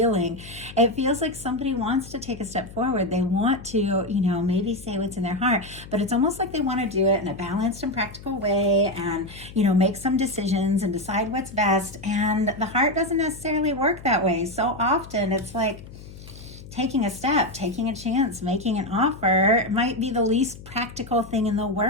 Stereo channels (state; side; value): noise; left; hum, 16 dB below the sound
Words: It feels like somebody wants to take a step forward. They want to, maybe say what's in their heart, but it's almost like they want to do it in a balanced and practical way, and, make some decisions and decide what's best. And the heart doesn't necessarily work that way. So often it's like taking a step, taking a chance, making an offer. It might be the least practical thing in the